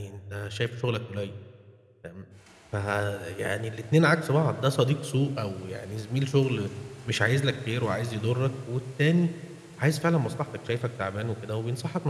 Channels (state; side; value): identical; both; correlation 1.00